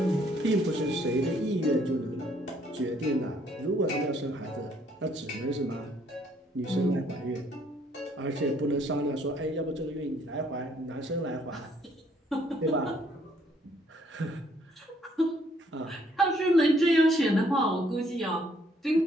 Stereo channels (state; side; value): normal; both; correlation 0.66